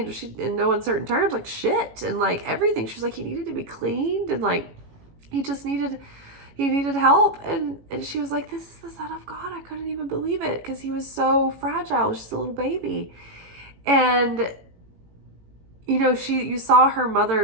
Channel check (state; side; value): late; left; 18 ms